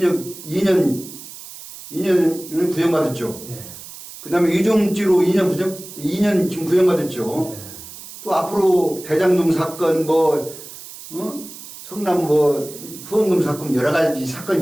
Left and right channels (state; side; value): noise; right; hiss, 15 dB below the sound